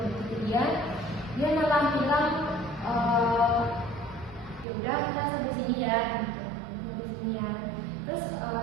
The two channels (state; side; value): drops out; left; at 4.7 s